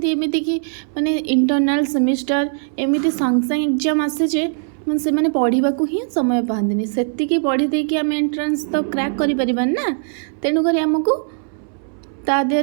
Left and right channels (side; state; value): left; silent; 66 dB below the other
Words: कि माने इंटरनल सेमिस्टर एमती संग संग एग्जाम आसे जे मैं से मैंने पढ़ा ही समय पाती से पढ़ी देकी आम एंट्रांस तो क्रैक कर ना। तेणुक आमको ता